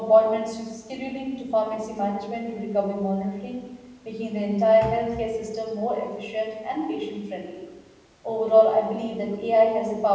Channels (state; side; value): identical; both; correlation 1.00